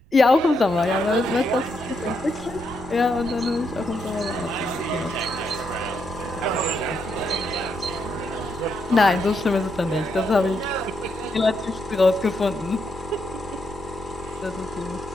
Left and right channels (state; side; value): noise; right; rumble, 23 dB below the sound